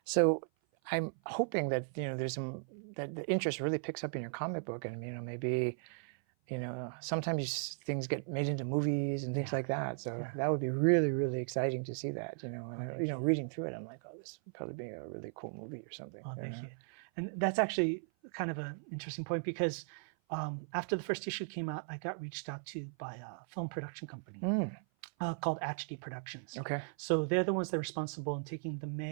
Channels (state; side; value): silent; left; 53 dB below the other